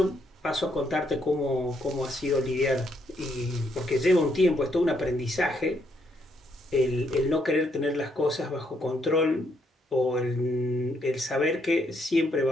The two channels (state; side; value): normal; both; correlation 0.74